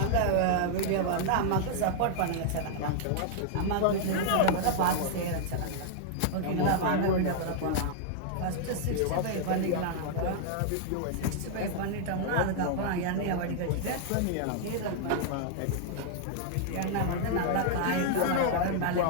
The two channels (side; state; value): both; different; correlation -0.01